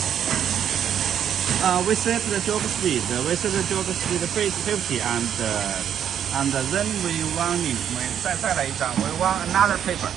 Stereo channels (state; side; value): quieter; left; 9.3 dB